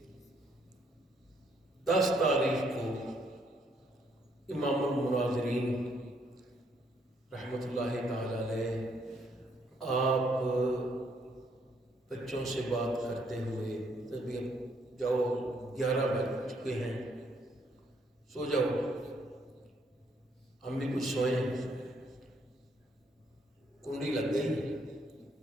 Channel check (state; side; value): normal; both; correlation 0.70